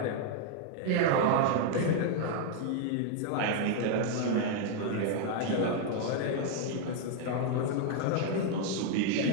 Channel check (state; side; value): different; both; correlation 0.00